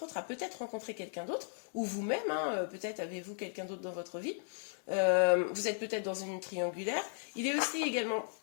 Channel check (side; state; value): right; silent; digital silence